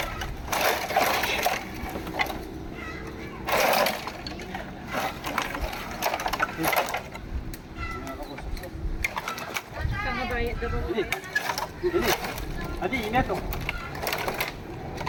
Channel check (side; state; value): both; identical; correlation 1.00